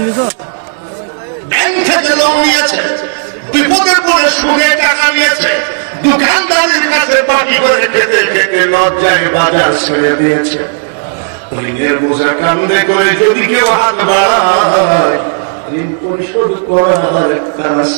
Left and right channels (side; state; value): left; silent; digital silence